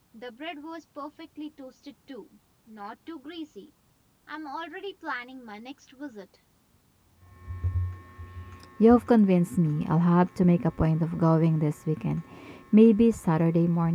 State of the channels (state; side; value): identical; both; correlation 1.00